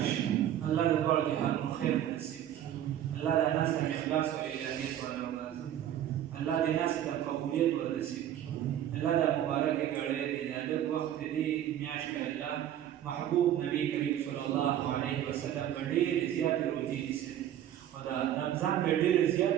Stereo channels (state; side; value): quieter; left; 11.2 dB